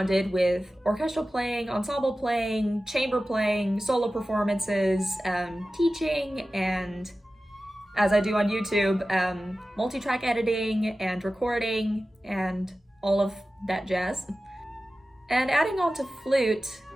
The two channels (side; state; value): both; normal; correlation 0.95